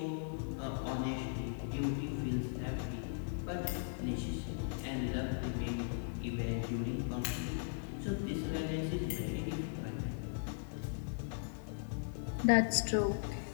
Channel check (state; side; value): silent; right; digital silence